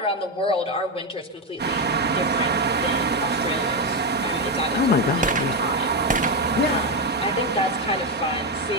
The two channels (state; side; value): normal; both; correlation 0.08